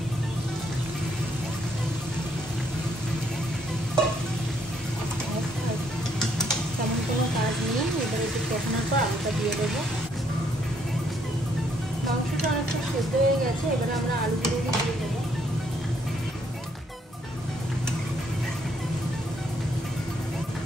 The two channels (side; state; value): both; normal; correlation 0.70